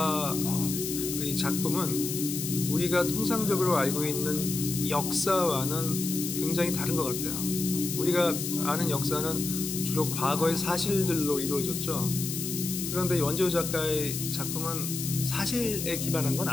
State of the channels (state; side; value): noise; left; hiss, 5 dB below the sound